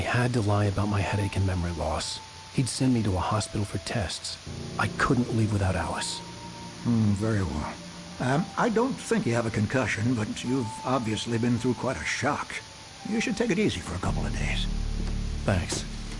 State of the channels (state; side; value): identical; both; correlation 1.00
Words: to lie about my headache and memory loss. He'd send me to a hospital for tests. I couldn't leave without Alice. Very well. I don't think you have a concussion, but you've obviously been through quite a shock. You should take it easy for a couple of days. Thanks.